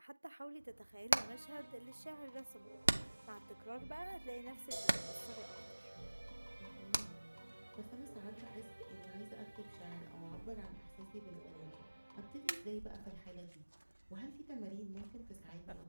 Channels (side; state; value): both; inverted; correlation -1.00